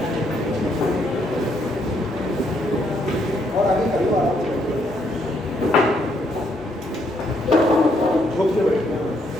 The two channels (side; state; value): both; normal; correlation 0.73